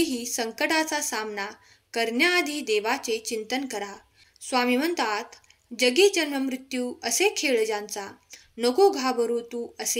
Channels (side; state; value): both; identical; correlation 1.00